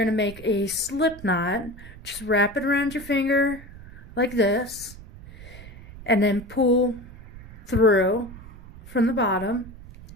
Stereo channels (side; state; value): right; noise; rumble, 17 dB below the sound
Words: to make a slip knot. Just wrap it around your finger like this and then pull through from the bottom,